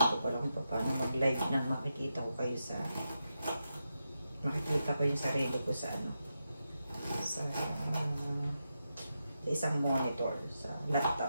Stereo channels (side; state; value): both; inverted; correlation -0.87